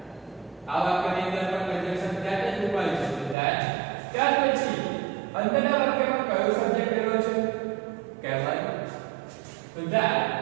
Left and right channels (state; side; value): drops out; left; at 3.4 s